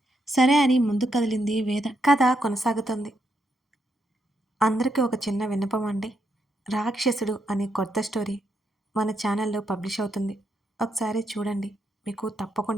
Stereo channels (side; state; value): both; normal; correlation 0.79